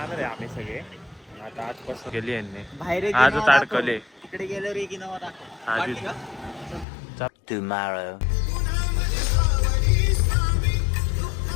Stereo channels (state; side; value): drops out; right; at 6.9 s